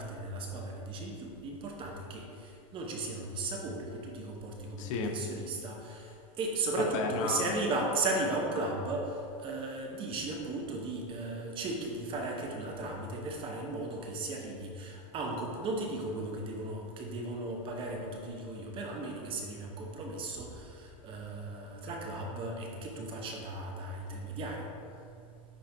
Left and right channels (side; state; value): both; normal; correlation 0.15